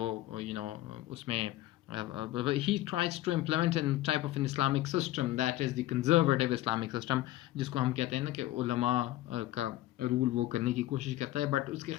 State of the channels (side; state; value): right; quieter; 15.6 dB